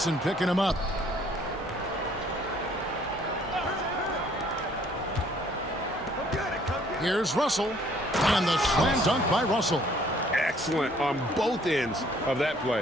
picking him up. Here's Russell. And the slam dunk by Russell. Excellent on both ends of that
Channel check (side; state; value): both; normal; correlation 0.60